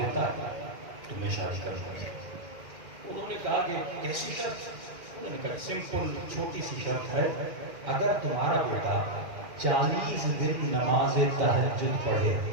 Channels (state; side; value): late; left; 2.1 ms